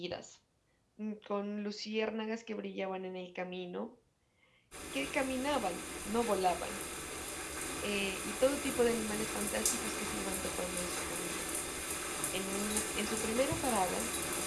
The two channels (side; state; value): both; identical; correlation 1.00